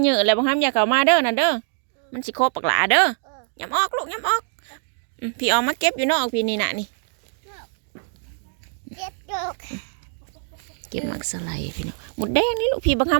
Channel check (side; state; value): left; silent; digital silence